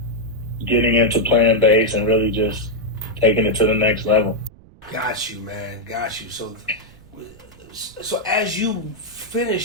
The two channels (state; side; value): noise; right; rumble, 24 dB below the sound